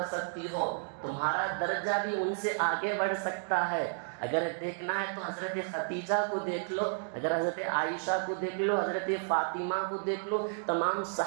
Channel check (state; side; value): silent; left; digital silence